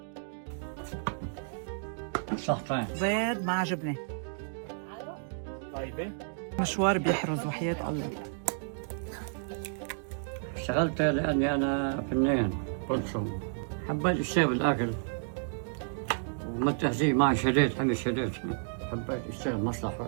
صحتين بيض مع جبنة. طيبة. مشوار بيحرز وحياة الله. اشتغلت لاني انا فنان برسم، حبيت اشتغل بالاكل وما التهذيب معي شديت حمي شديت، حبيت اشتغل مصلحة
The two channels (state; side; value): silent; left; digital silence